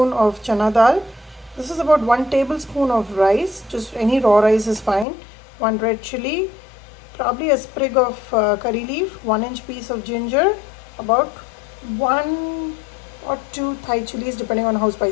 of chana dal. This is about 1 tablespoon of rice, just any raw rice is fine, 1 red chili, probably a sprig of curry leaf, 1-inch piece of ginger, about 1 or 2 Thai chilies depending on how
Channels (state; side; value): drops out; right; at 5.1 s